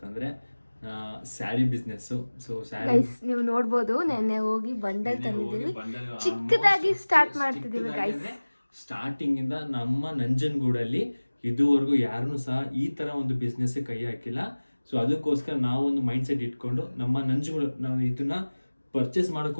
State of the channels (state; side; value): inverted; both; correlation -1.00